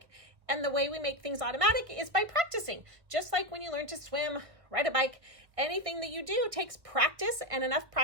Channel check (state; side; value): late; left; 1.4 ms